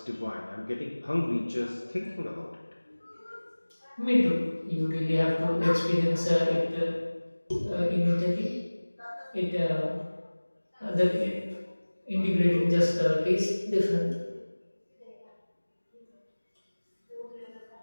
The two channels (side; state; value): both; inverted; correlation -1.00